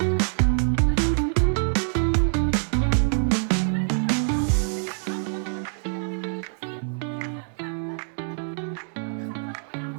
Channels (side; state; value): left; silent; digital silence